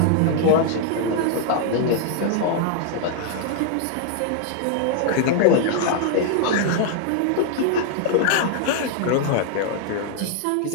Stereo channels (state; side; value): different; both; correlation 0.00